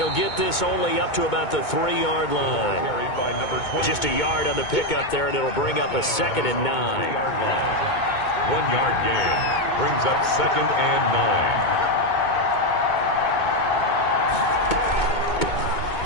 they'll get this only up to about the 3-yard line. Carried by number 20. Just a yard on the pickup there, and it'll bring up a 2nd and 9. 3-yard line. 1-yard gain brings up 2nd and 9.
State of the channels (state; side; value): late; right; 2.2 ms